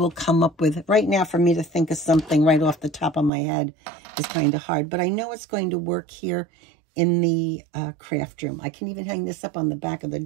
come up with. Right now, for me to think of something right off the top of my head is kind of hard. But I know it's going to work here in the craft room. I can even hang this up on the back of the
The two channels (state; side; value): drops out; left; at 3.3 s